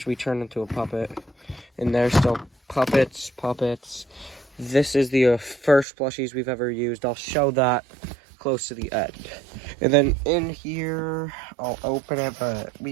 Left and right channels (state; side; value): drops out; left; at 5.9 s